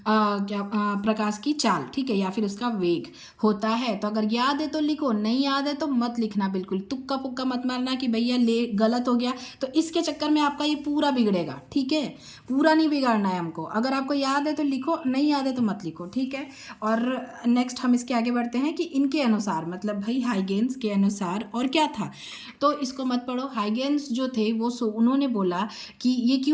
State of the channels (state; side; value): identical; both; correlation 1.00